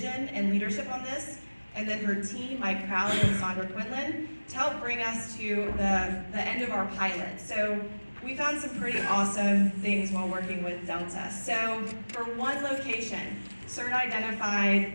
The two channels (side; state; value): both; inverted; correlation -1.00